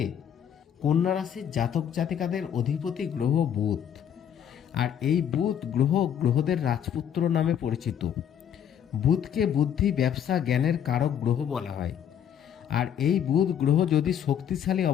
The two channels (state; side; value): quieter; right; 9.0 dB